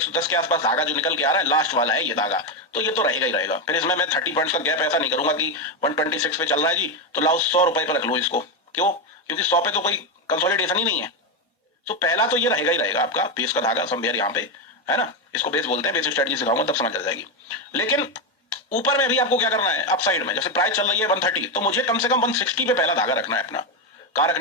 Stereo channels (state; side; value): normal; both; correlation 0.09